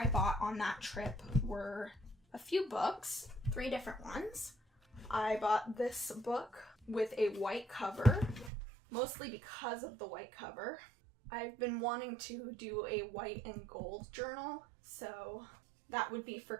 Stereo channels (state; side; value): drops out; left; at 8.5 s